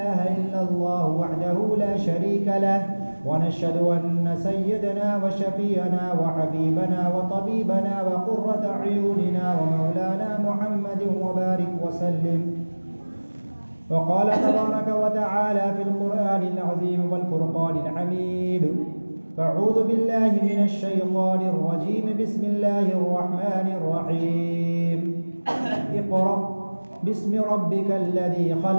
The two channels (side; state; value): both; inverted; correlation -1.00